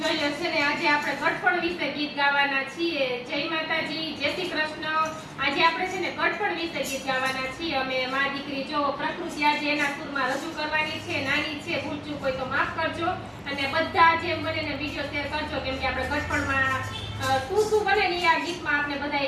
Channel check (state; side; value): identical; both; correlation 1.00